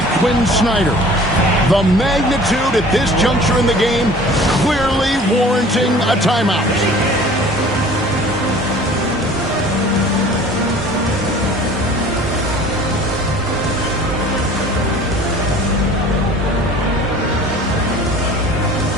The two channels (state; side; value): normal; both; correlation 0.47